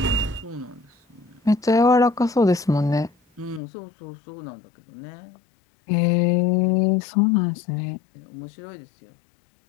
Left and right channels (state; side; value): drops out; right; at 3.6 s